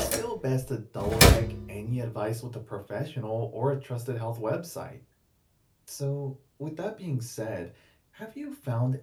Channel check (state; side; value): identical; both; correlation 1.00